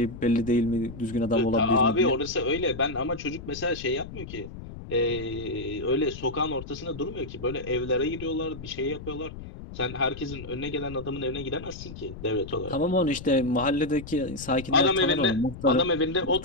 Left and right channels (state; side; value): noise; left; rumble, 12 dB below the sound